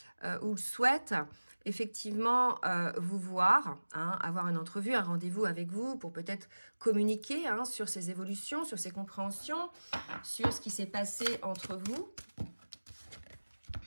ou souhaite effectivement vous voir, hein, avoir une entrevue, un rendez-vous avec vous pour peut-être communiquer, hein, sur ses évolutions, sur ses compréhensions, sur ce qui s'est passé entre vous.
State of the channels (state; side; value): inverted; both; correlation -1.00